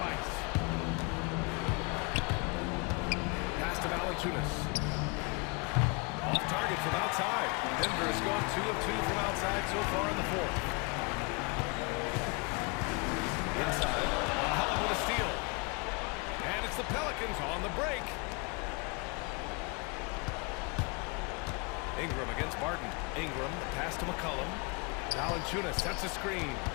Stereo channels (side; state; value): right; quieter; 30.8 dB